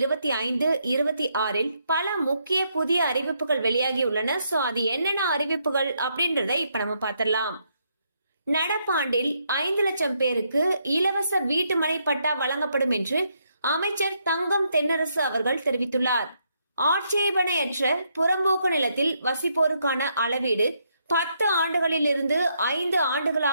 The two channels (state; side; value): inverted; both; correlation -0.76